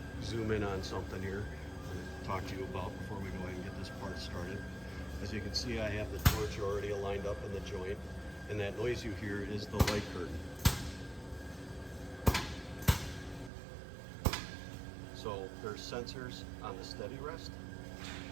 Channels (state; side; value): drops out; left; at 13.5 s